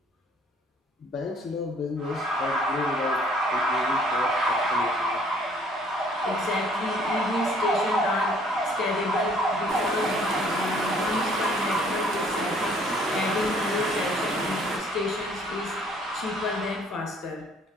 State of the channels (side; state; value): both; normal; correlation 0.59